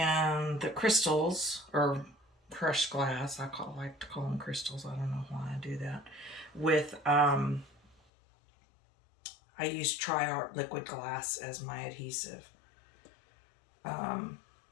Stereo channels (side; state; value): right; drops out; at 8.0 s